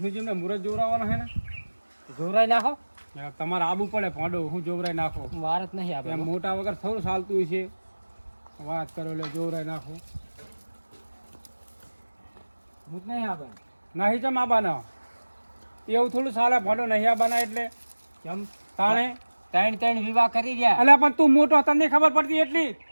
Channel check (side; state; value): both; inverted; correlation -1.00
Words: મુરત જોવરાવવાનો છે ને જોરાઈ નાખો. તમારે આબુ પડે ફોડો હું જોવરાઈ નાખો. વાર જ નહીં એમ આપણે. મોટા વગર થોડું ચાલતું હોય છે. વાત કરો એટલે જોવરાઈ નાખો. હું જ નહીં આવે. નહીં ચમ આબાના એવું થોડું ચાલે ફોડો નહીં આબાના એટલે કેમ તાણે ત્રણ વિવાહ કરી ગયા. અલ્યા પણ તું મોટો તને ખબર પડતી એટલી